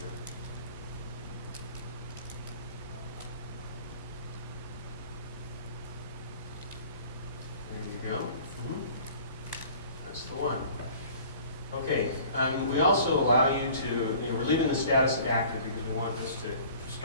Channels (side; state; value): both; inverted; correlation -0.48